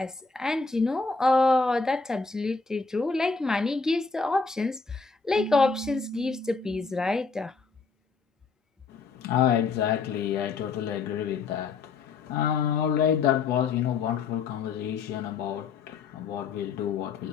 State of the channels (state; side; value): quieter; right; 4.7 dB